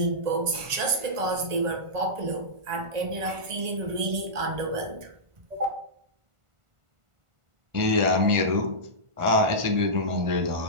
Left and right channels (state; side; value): late; left; 1.5 ms